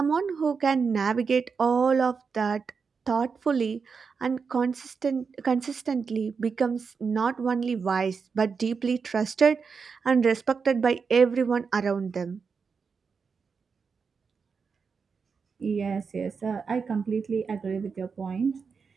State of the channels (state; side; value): quieter; left; 5.4 dB